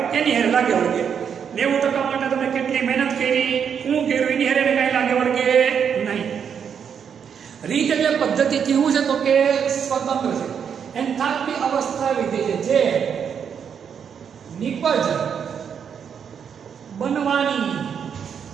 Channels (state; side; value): quieter; left; 7.5 dB